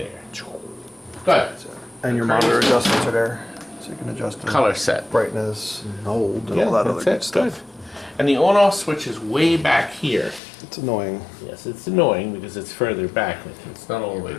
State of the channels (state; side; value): drops out; right; at 10.4 s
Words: Good. And your monitor adjustments are there. So you can adjust the Color set. brightness and hold and all that other good stuff. And the on-off switch is way back here. It's annoying. Yes, it's annoying because it's further back. It's not all the way